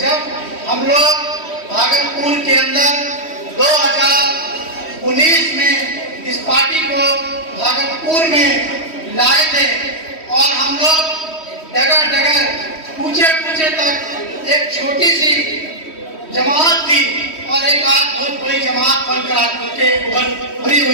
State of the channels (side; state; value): right; late; 3.1 ms